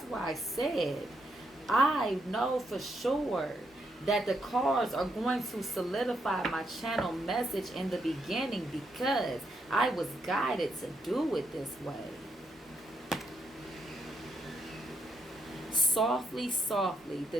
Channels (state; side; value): normal; both; correlation 0.78